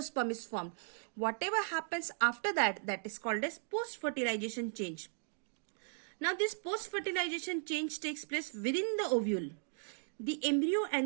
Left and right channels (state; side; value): silent; left; digital silence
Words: is formed. Whatever happens after that, that is called as post-fertilization change. Now this post-fertilization change takes place within the ovule. The embryo